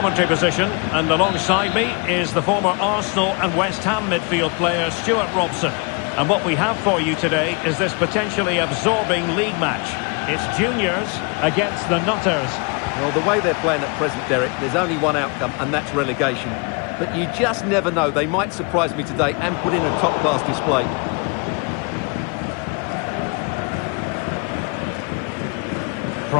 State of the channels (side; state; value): right; quieter; 32.6 dB